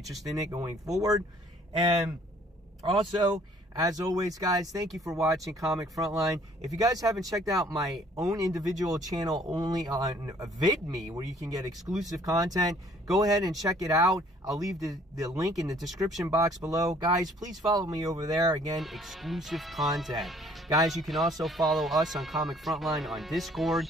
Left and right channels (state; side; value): normal; both; correlation 0.59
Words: in it going forward? And also, As always, guys, thank you for watching Comic Frontline. If you guys haven't checked out my own individual channel only on VidMe, where you can get exclusive content, go ahead and check it out. I'll leave the link in the description box below. Guys, please follow me over there. Again, exclusive content. Guys, you can also follow us on Comic Frontline on Discord,